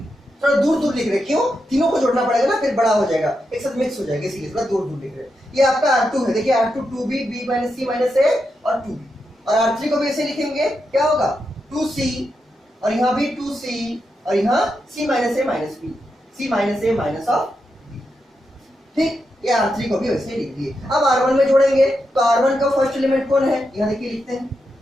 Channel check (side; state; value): both; normal; correlation 0.85